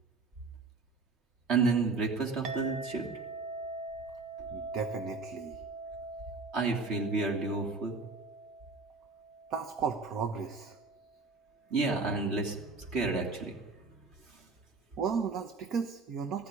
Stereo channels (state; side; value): quieter; left; 3.9 dB